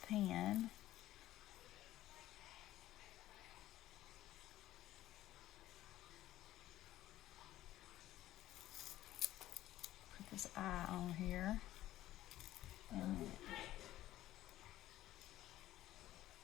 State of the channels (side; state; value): right; quieter; 14.5 dB